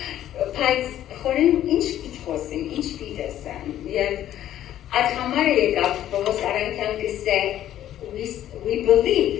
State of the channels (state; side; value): quieter; right; 12.0 dB